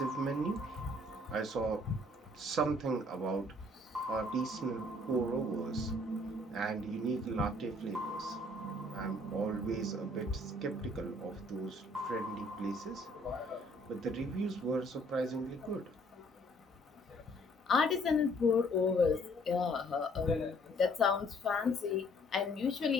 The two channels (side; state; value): both; normal; correlation 0.61